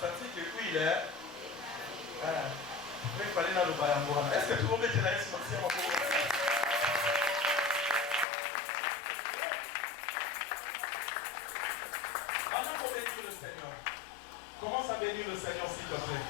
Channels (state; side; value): drops out; right; at 8.2 s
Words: que oui là il fallait na lo bayango wana. Est-ce que tout le monde est là? Merci à vous. Avant qu'on bénisse le Seigneur, commence à bénir le Seigneur s'il te plaît.